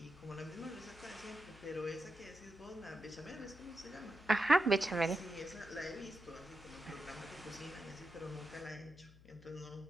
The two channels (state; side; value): noise; left; hum, 21 dB below the sound